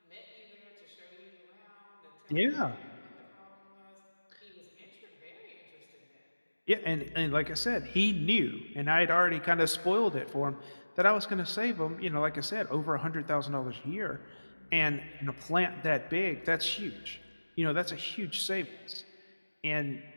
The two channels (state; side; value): inverted; both; correlation -1.00